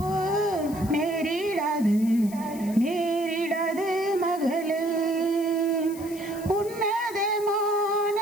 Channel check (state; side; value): noise; left; hiss, 17 dB below the sound